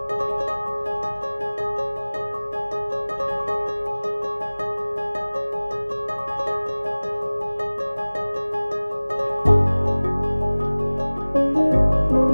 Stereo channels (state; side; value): inverted; both; correlation -1.00